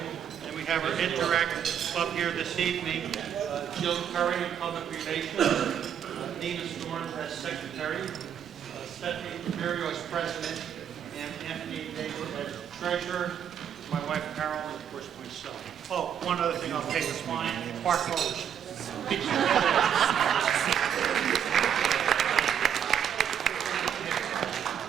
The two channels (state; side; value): quieter; left; 8.8 dB